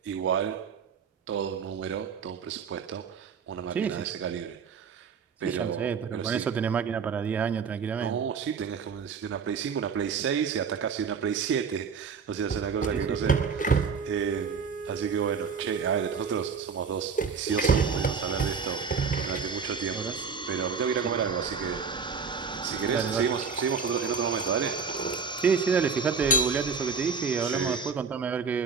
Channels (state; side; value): quieter; left; 5.7 dB